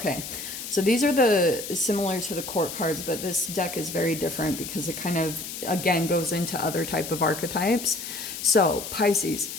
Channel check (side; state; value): left; noise; hiss, 8 dB below the sound